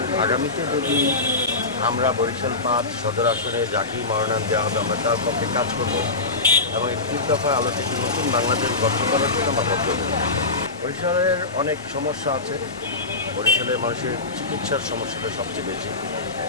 আগামীতে যদি আমরা বরিশাল ৫ সদর আসনে যাকেই মনোনয়ন দেওয়া হবে আমরা তার পক্ষে কাজ করব এবং ৩১ দফার আলোতে একটি নতুন বাংলাদেশ গঠন করার জন্য আমরা বদ্ধ। বরিশালের অনেক সমস্যা আছে। বরিশালের মানুষের চিকিৎসার সমস্যাটা সবচেয়ে বেশি।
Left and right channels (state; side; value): quieter; right; 3.5 dB